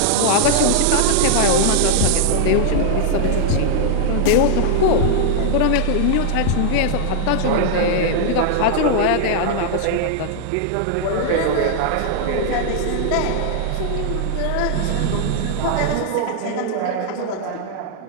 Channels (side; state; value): both; different; correlation -0.01